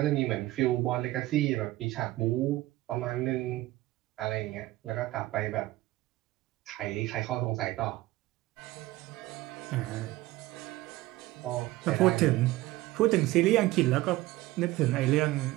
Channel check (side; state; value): left; quieter; 17.7 dB